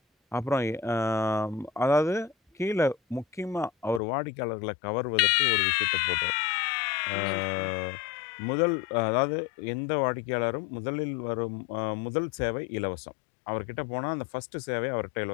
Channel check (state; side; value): drops out; right; at 4.0 s